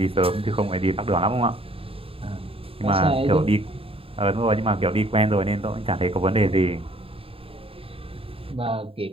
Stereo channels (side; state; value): left; late; 0.27 ms